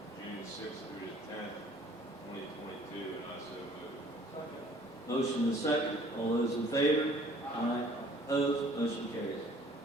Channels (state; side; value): normal; both; correlation 0.55